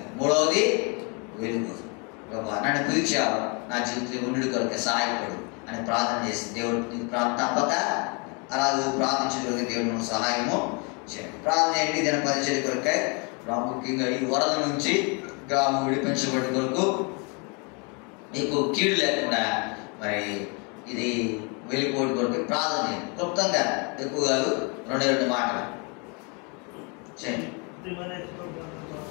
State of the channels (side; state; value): right; quieter; 33.0 dB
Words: 3వది వెలుగు. ప్రభా నన్ను పిలిచావు, నా జీవితంలో ఉండి కొరకే సహాయపడు అని ప్రార్థన చేసి దేవుడు తప్పక అలాగే ప్రార్థించగలిగే దేవుడు సహాయము చేయండి. ప్రార్థన ఏంటి? దీని పరిచయ కొరకై ప్రాముఖ్యంగా ఈ వరద నుంచి గ్రామం విడిపించబడి కొరకు నీకు కీడు లేకుండా మరి ఇది వెళ్ళిపోవడం కొరకు ప్రార్థన చేయండి. క్లుప్తంగా ఎక్కువ కాదు, 2 మాటలు చేయండి.